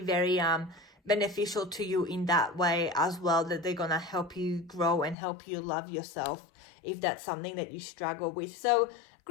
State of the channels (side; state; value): right; drops out; at 5.2 s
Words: very beneficial to you in that way as well, that they're gonna help you grow and help you love yourself if that's something that you struggle with. So